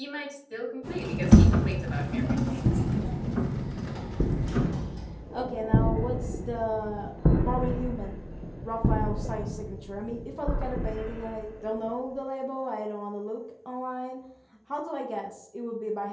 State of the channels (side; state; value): both; identical; correlation 1.00